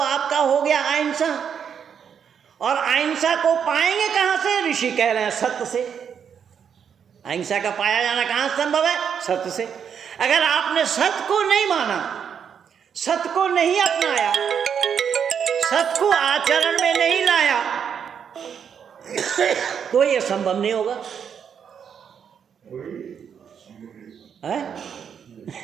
हो गया अहिंसा, और अहिंसा को पाएंगे कहाँ से? ऋषि कह रहे हैं सत्य से। अहिंसा का पाया जाना कहाँ संभव है? सत्य से। अगर आपने सत्य को नहीं माना, सत्य को नहीं अपनाया, सत्य को आचरण में नहीं लाया, तो यह संभव नहीं होगा।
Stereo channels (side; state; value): left; quieter; 7.6 dB